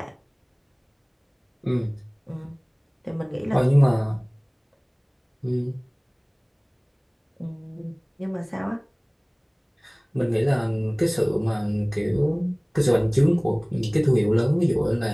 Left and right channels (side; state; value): both; identical; correlation 1.00